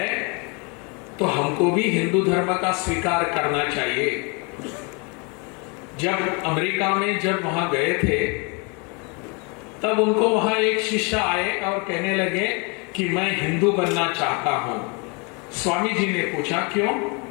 तो हमको भी हिंदू धर्म का स्वीकार करना चाहिए। जब अमेरिका में जब वहां गए थे, तब उनको वहां एक शिष्य आए और कहने लगे कि मैं हिंदू बनना चाहता हूं। स्वामी जी ने पूछा क्यों?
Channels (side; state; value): right; quieter; 32.2 dB